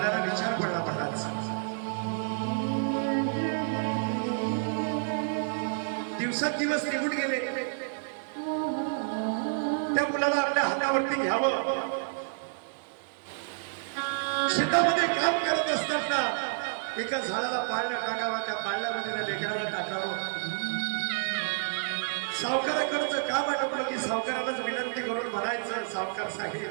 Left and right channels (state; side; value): silent; left; 58 dB below the other